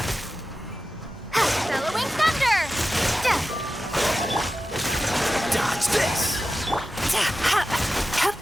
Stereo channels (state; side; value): normal; both; correlation 0.93